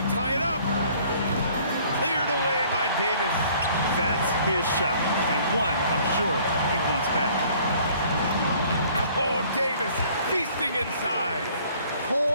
tie it up. Cleared away by Davis. That's his shot, and one I'm sure he wants back. Oh, Davis feasting inside.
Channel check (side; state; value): both; inverted; correlation -0.56